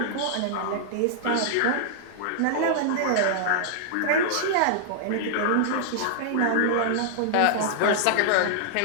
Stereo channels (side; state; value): both; different; correlation -0.01